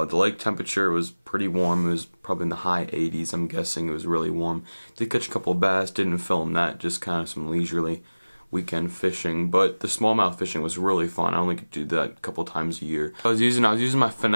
lake temperature was pretty warm. It was probably in the high 80s. I'm guessing it was really warm. Did catch a couple of bass, didn't film that, just kind of some leisurely weekend fishing, but the smallmouth fishing was really fun. I only could do that a couple times a year. I was using my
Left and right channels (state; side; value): inverted; both; correlation -1.00